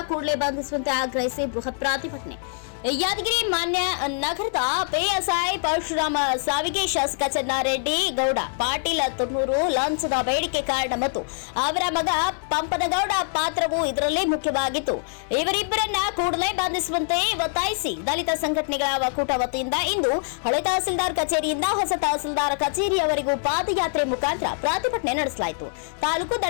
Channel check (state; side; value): silent; right; 61 dB below the other